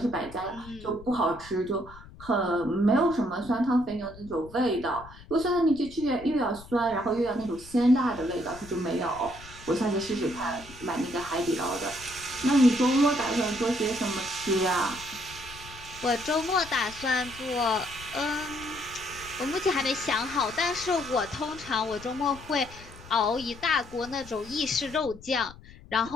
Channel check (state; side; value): noise; left; rumble, 18 dB below the sound